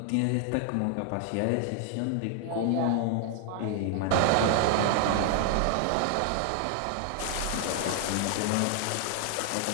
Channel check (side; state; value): both; different; correlation 0.00